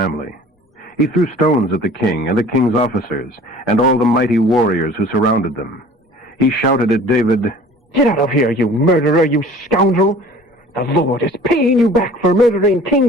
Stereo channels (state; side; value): normal; both; correlation 0.47